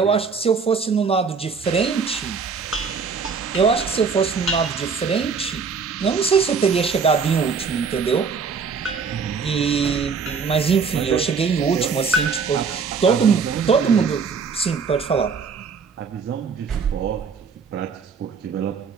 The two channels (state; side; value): quieter; left; 5.4 dB